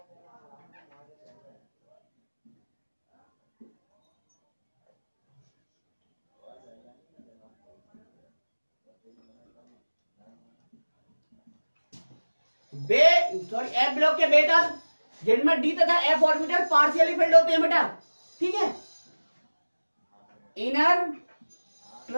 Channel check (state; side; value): inverted; both; correlation -1.00